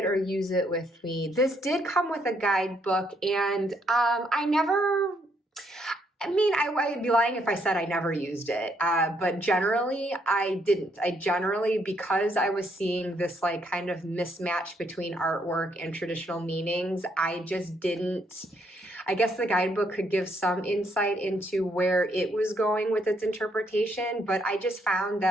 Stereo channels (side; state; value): both; normal; correlation 0.72